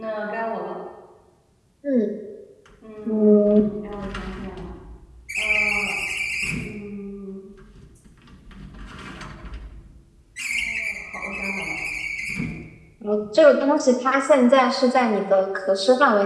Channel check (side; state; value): both; identical; correlation 1.00